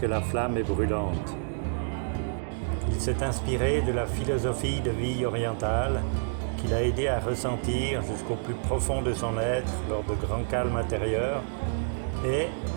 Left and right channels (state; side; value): silent; left; digital silence